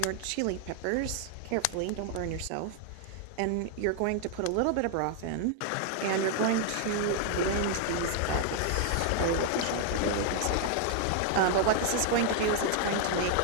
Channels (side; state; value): both; different; correlation 0.00